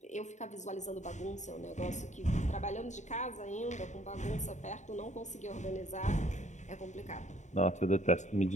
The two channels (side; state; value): right; late; 0.34 ms